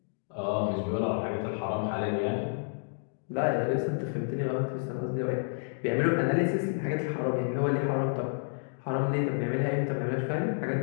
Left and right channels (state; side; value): silent; right; digital silence